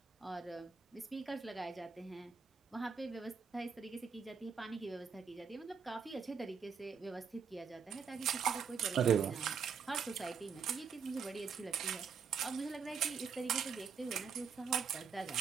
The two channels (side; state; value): left; quieter; 6.1 dB